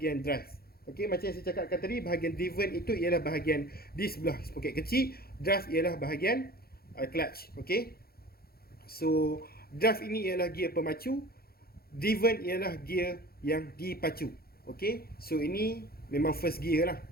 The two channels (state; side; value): late; right; 0.44 ms